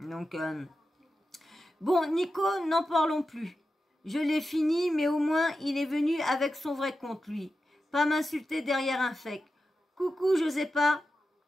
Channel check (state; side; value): normal; both; correlation 0.91